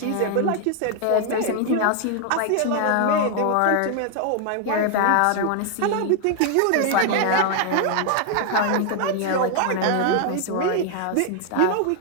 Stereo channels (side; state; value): both; different; correlation 0.00